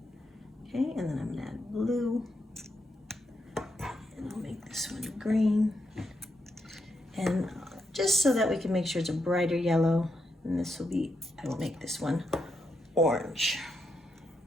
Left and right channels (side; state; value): both; normal; correlation 0.82